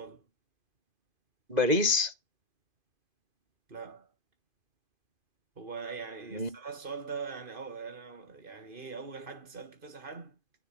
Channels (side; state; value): left; late; 2.5 ms